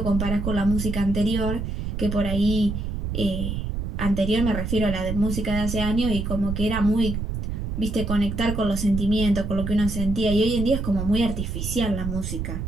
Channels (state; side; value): noise; right; rumble, 3 dB below the sound